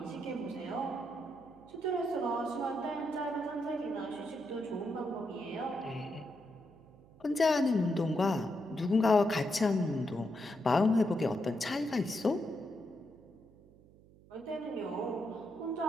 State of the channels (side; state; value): right; noise; hum, 25 dB below the sound